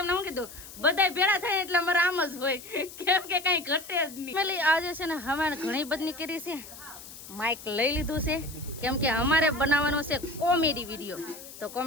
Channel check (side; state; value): left; noise; hiss, 15 dB below the sound